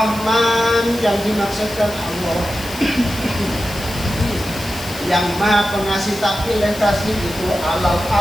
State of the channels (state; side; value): noise; left; hiss, 14 dB below the sound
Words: yang dimaksudkan Allah yang Maha Pengasih tapi kasih itu 'alal